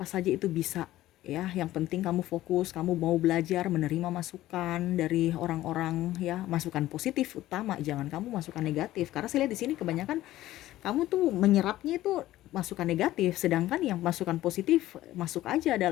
saja itu bisa ya, yang penting kamu fokus, kamu mau belajar, menerima masukan dari orang-orang ya, masukan positif utama, jangan kamu masukan negatif, karena saya lihat di sini kebanyakan kamu tuh menyerapnya itu masukan negatif, sedangkan yang masukan positif masuk aja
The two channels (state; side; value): quieter; right; 15.1 dB